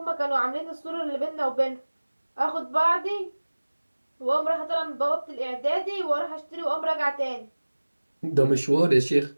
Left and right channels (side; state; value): both; inverted; correlation -1.00